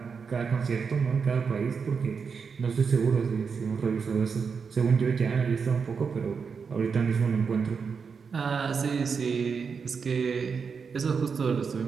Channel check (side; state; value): left; quieter; 5.7 dB